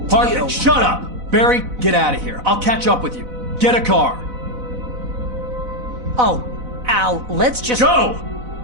Hartman, shut up! Barry, get out of here. I'll catch up with you. Get a car. Oh, Al, let's just... Go!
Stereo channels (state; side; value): late; left; 4.0 ms